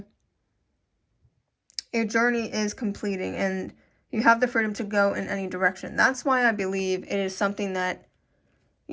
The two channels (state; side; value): identical; both; correlation 1.00